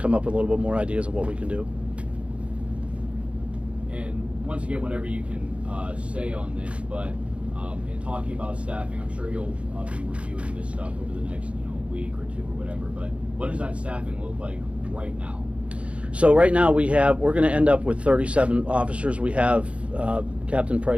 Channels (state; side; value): late; left; 0.061 ms